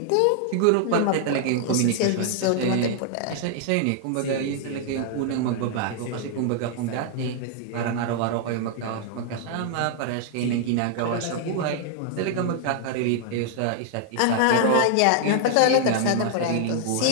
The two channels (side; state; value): both; different; correlation -0.01